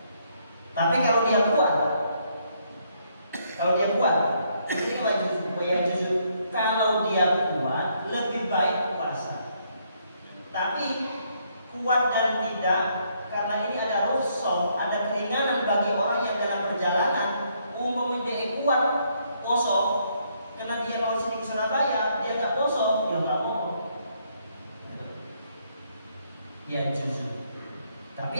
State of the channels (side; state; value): both; inverted; correlation -0.72